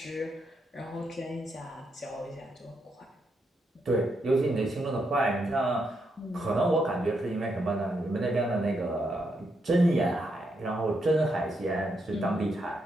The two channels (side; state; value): both; normal; correlation 0.80